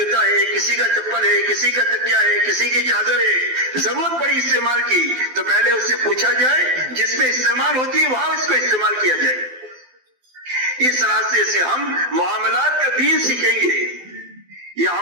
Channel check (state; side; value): late; left; 12 ms